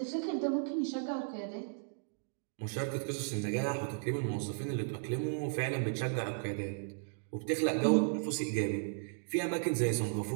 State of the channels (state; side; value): silent; left; digital silence